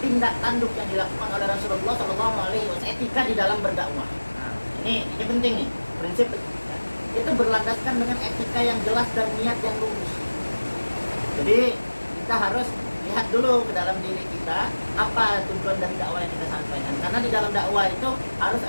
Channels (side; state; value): both; inverted; correlation -1.00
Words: tindak tanduk yang dilakukan oleh Rasulullah Shallallahu Alaihi Wasallam, etika di dalam berdakwah. Nah, ini penting nih, prinsip, ya, itu berlandaskan dengan etika yang jelas dan niat yang lurus. Jadi kita harus lihat dulu ke dalam diri kita apa tujuan dari dakwah yang kita sampaikan, karena di dalam dakwah itu harus